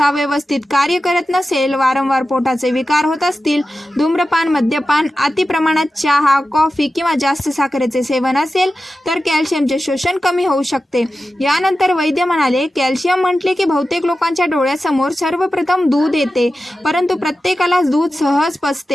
व्यवस्थित कार्य करत नसेल, वारंवार पोटाचे विकार होत असतील, धूम्रपान, मद्यपान, अति प्रमाणात चहा, कॉफी किंवा जास्त साखरेचे सेवन असेल तर कॅल्शियमचे शोषण कमी होऊ शकते. यानंतर वैद्य म्हणाले, कॅल्शियम म्हटले की बहुतेक लोकांच्या डोळ्यासमोर सर्वप्रथम दूध येते, परंतु प्रत्येकाला दूध सहज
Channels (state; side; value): normal; both; correlation 0.93